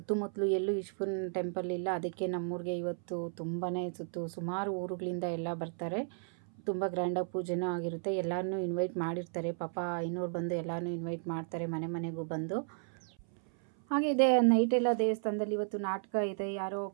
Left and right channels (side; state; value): left; silent; 55 dB below the other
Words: ಎಲ್ಲೂ ಈಶ್ವರನ ಟೆಂಪಲ್ ಇಲ್ಲ, ಅದಕ್ಕೆ ನಮ್ಮೂರಿಗೆ ಇವತ್ತು ತುಂಬಾ ಸುಮಾರು ಊರುಗಳಿಂದ ಎಲ್ಲ ಬರ್ತಾರೆ. ತುಂಬ ಗ್ರ್ಯಾಂಡಾಗಿ ಪೂಜೆನೂ ಆಗಿರುತ್ತೆ. ಎಲ್ಲರನ್ನೂ ಇನ್ವೈಟ್ ಮಾಡಿರ್ತಾರೆ. ಪಾಪ ಐನೂರು ಬಂದು ಎಲ್ಲರನ್ನೂ ಇನ್ವೈಟ್ ಮಾಡ್ತಾರೆ, ಮನೆ ಮನೆಗೂ ಬಂದು. ಹಾಗೆ ಇದೆ ನೈಟೆಲ್ಲ ದೇವಸ್ಥಾನದಲ್ಲಿ ಇವತ್ತು ನಾಟಕ ಇದೆ. ಯಾರೋ